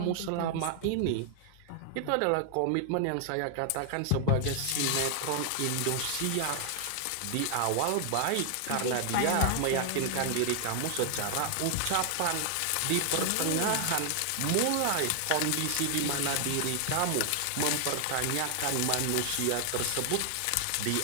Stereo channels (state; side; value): different; both; correlation 0.00